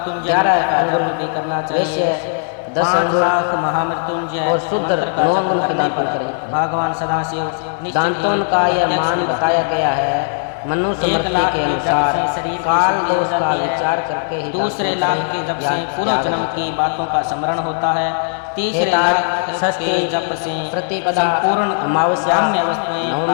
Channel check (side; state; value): right; silent; digital silence